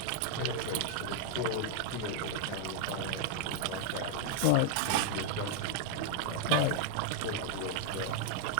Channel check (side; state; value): both; different; correlation 0.00